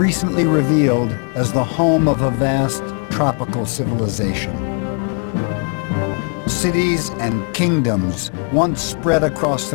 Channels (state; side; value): quieter; right; 38.1 dB